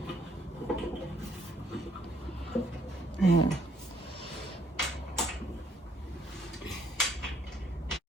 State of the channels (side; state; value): both; normal; correlation 0.67